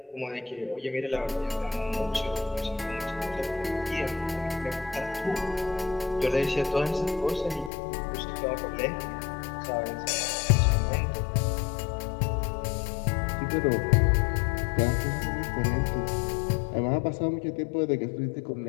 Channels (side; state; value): right; drops out; at 7.7 s